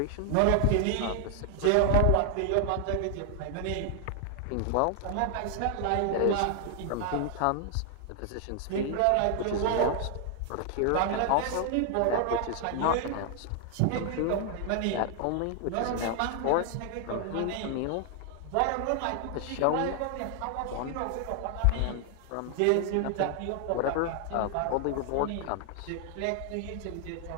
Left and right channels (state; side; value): different; both; correlation 0.00